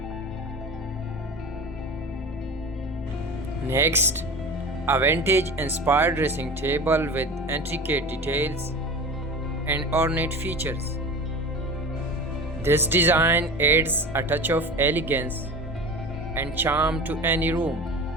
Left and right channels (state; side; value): normal; both; correlation 0.33